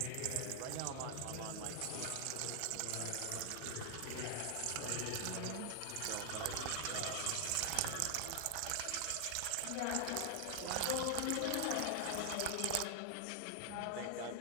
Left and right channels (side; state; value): both; different; correlation 0.00